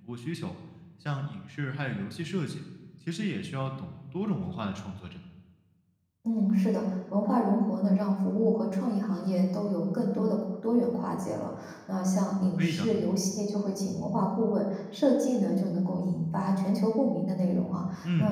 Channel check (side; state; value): both; identical; correlation 1.00